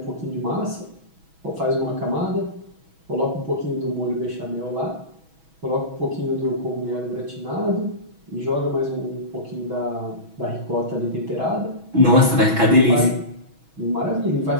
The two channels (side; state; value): left; late; 6.2 ms